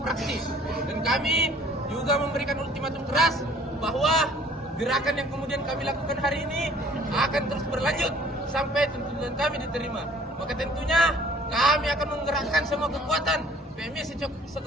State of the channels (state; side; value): normal; both; correlation 0.54